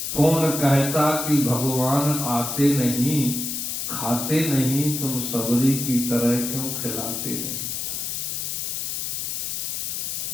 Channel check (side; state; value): left; noise; hiss, 3 dB below the sound